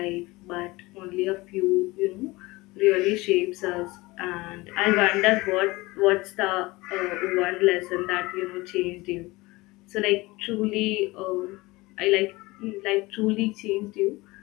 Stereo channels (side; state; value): right; quieter; 21.6 dB